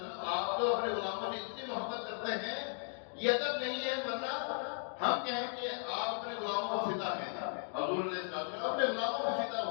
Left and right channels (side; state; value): right; silent; 53 dB below the other